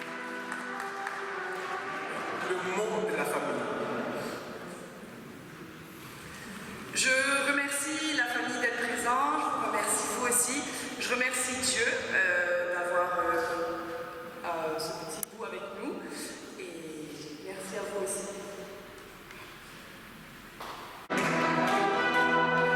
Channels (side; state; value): both; identical; correlation 1.00